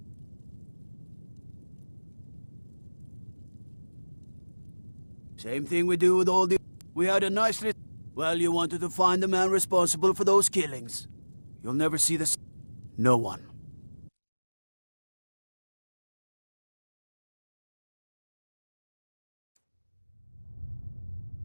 Same thing we do with all the... We had a nice list. Well, you wanted to find the man responsible for those killings. You'll never see this. No one.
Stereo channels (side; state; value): both; inverted; correlation -1.00